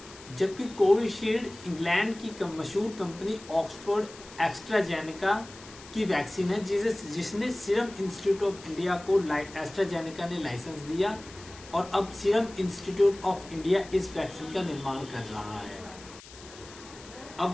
जबकि कोविशील्ड इंग्लैंड की मशहूर कंपनी ऑक्सफोर्ड एस्ट्राजेनेका की वैक्सीन है जिसने सीरम इंस्टीट्यूट ऑफ इंडिया को एस्ट्राजेनेका ने लाइसेंस दिया और अब सीरम इंस्टीट्यूट ऑफ इंडिया इस वैक्सीन का निर्माण कर रहा है।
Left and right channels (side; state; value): left; noise; hiss, 18 dB below the sound